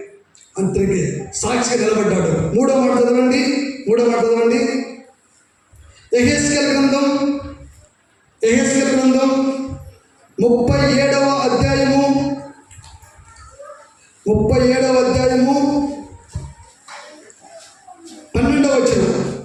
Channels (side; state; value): both; identical; correlation 1.00